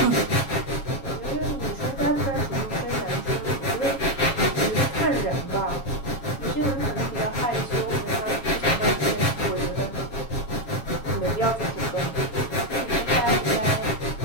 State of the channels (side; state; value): right; late; 7.3 ms